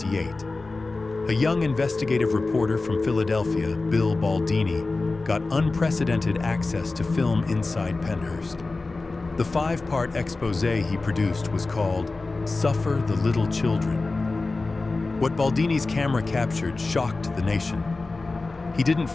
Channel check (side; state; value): right; quieter; 3.5 dB